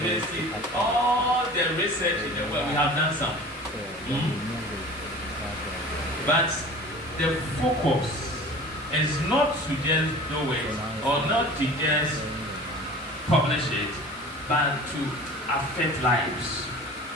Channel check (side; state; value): both; normal; correlation 0.41